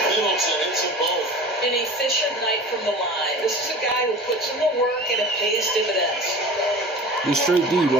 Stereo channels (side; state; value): both; normal; correlation 0.38